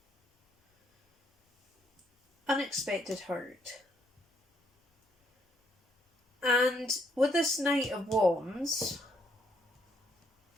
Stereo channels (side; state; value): both; normal; correlation 0.70